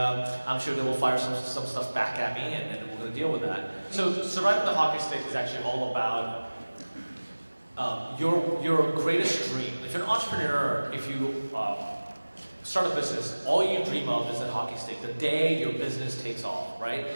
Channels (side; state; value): both; inverted; correlation -1.00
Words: sure they will fire some stuff back at me, and then we're going to deal with that. So, surviving the hockey stick is actually all about your greatest dream. If you're an entrepreneur, if you start a business, all you dream of is that hockey stick, the day your business takes off, right?